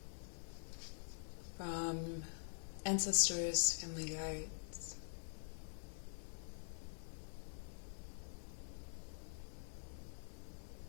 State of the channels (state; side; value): silent; right; digital silence